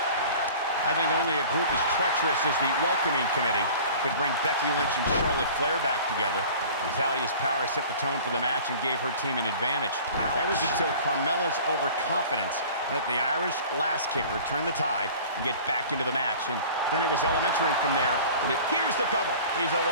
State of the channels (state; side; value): inverted; both; correlation -0.43